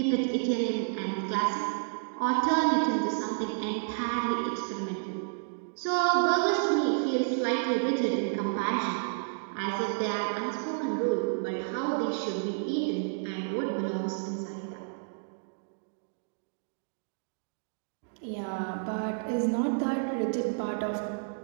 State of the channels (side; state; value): left; silent; digital silence